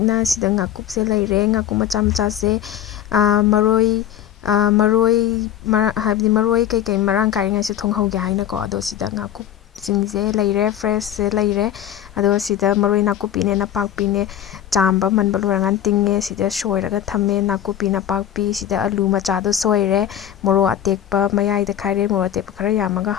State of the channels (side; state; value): right; quieter; 10.7 dB